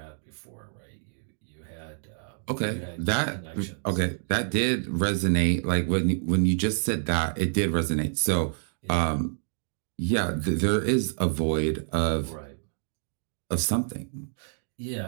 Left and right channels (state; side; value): silent; left; digital silence